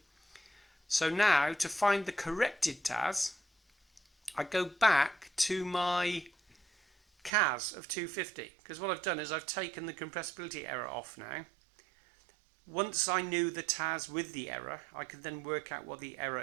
So now, to find the corrected TAS, I go back to my CAS of 250, because what I've done is I've taken the compressibility error off now. Once I knew the TAS with the error, I could then work out what the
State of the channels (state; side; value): drops out; left; at 7.3 s